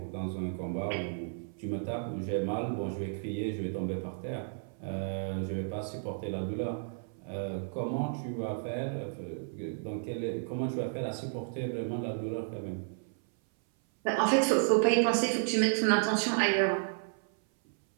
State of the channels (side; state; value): left; silent; 56 dB below the other